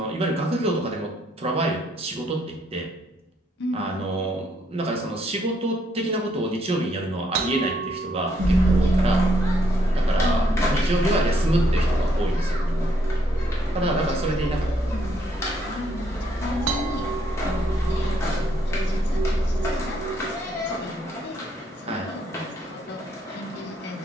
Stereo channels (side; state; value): both; normal; correlation 0.71